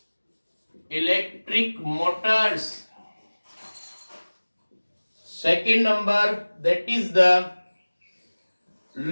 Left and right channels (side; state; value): both; inverted; correlation -1.00